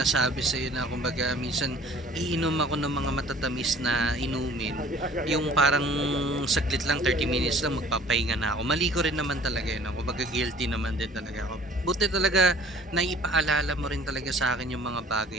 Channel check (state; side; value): normal; both; correlation 0.51